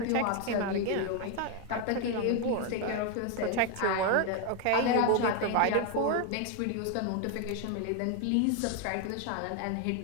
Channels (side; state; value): both; different; correlation 0.01